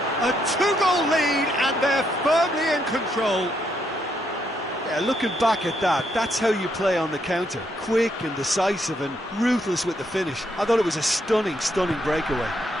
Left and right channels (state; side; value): normal; both; correlation 0.76